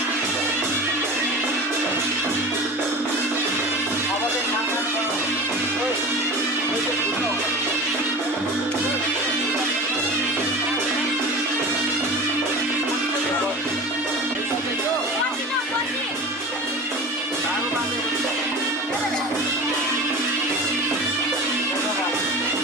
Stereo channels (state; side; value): normal; both; correlation 0.34